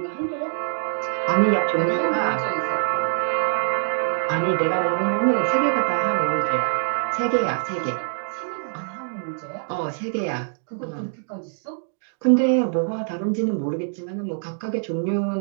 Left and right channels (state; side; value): silent; left; 61 dB below the other